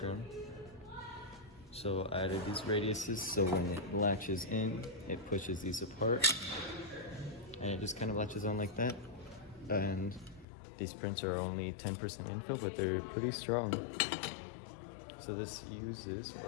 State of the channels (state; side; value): drops out; right; at 10.5 s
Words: So I added these radiuses so when it latches in, it pushes these apart. And it just kind of latches on like that. And these prints are only 10% infill, but they're pretty strong. So this uses